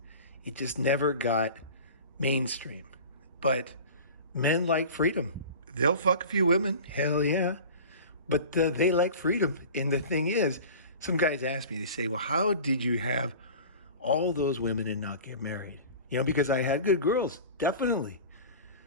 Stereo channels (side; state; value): both; inverted; correlation -0.37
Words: It just never got mainstream. But men like freedom. They'll fuck a few women, hell yeah. But they like freedom. And the thing is, some guys ask me, they say, well, how did you have all those women and not get married? You know, because I had good girls, definitely.